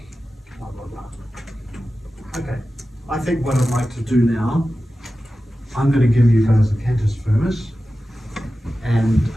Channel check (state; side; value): normal; both; correlation 0.94